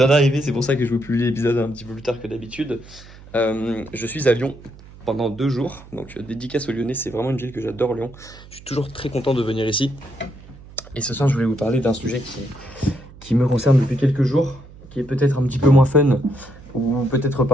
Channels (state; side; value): noise; right; hum, 20 dB below the sound